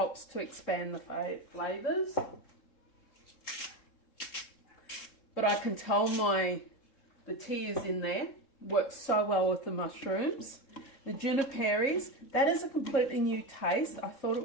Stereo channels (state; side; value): late; right; 3.7 ms